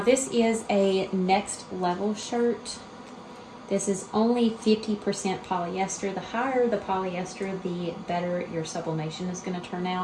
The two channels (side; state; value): both; identical; correlation 1.00